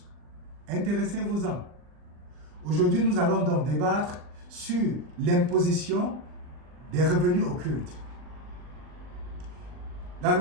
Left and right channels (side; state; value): left; late; 39 ms